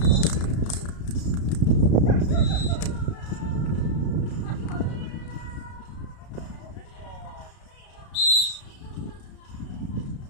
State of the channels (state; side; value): late; right; 33 ms